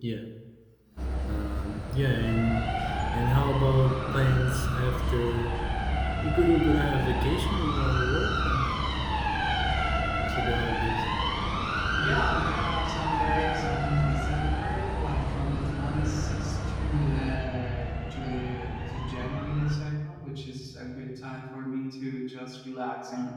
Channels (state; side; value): identical; both; correlation 1.00